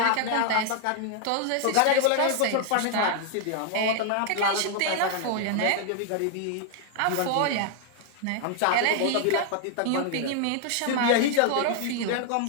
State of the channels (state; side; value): different; both; correlation 0.00